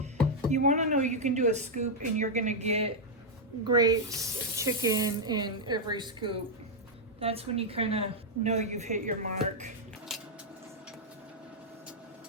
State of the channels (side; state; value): both; normal; correlation -0.03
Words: You want to know you can do a scoop and you're going to get grapes, chicken in every scoop. That's when you kind of know you've hit your mark.